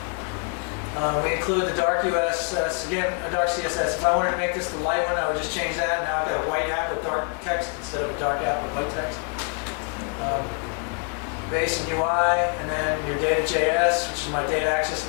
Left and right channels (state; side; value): quieter; right; 38.9 dB